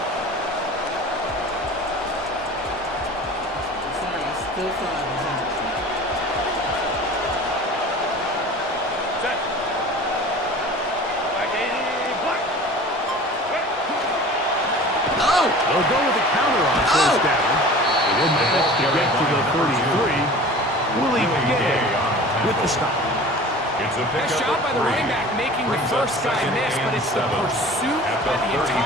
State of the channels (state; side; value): normal; both; correlation 0.41